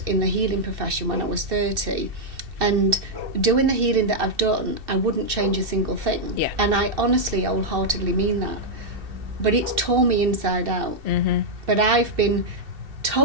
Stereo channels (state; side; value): late; left; 2.7 ms